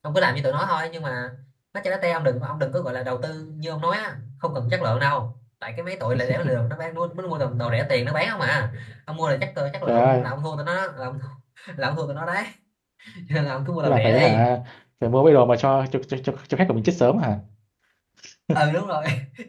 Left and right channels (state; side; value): identical; both; correlation 1.00